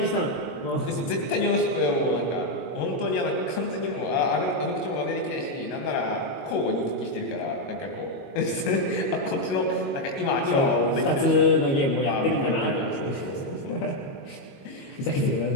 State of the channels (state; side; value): late; right; 22 ms